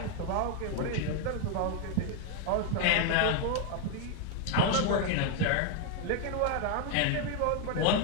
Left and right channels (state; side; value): different; both; correlation 0.01